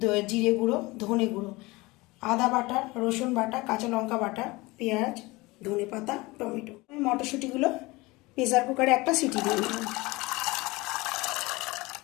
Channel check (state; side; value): quieter; right; 22.4 dB